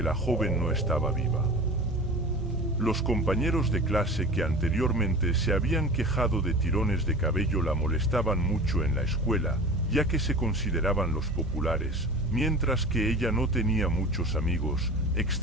la joven no estaba viva. Los compañeros de clase que anteriormente se habían quejado de tirones de cabello la molestaban mucho en la escuela, ya que se consideraban los populares, mientras que ella no tenía muchos amigos,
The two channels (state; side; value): normal; both; correlation 0.36